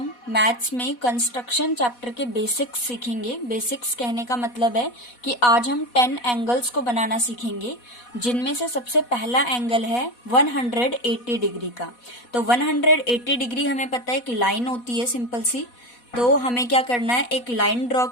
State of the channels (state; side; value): late; right; 4.1 ms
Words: maths में कंस्ट्रक्शन चैप्टर के बेसिक्स सीखेंगे। बेसिक्स कहने का मतलब है कि आज हम 10 एंगल्स को बनाना सीखेंगे, जिनमें से सबसे पहला एंगल है 180 डिग्री का। तो 180 डिग्री हमें पता है एक लाइन होती है सिंपल सी। तो हमें क्या करना है, एक लाइन ड्रॉ